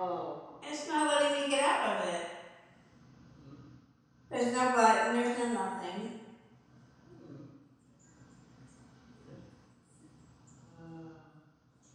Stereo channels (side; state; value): both; identical; correlation 1.00